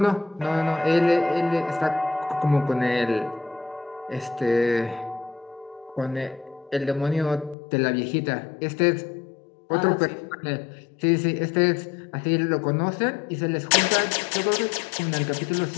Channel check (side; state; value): right; drops out; at 7.6 s